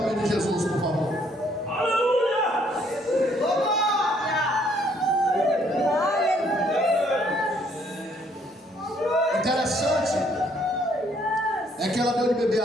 de Jesus, por favor. Interessante é que ela deu de beber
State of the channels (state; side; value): normal; both; correlation 0.66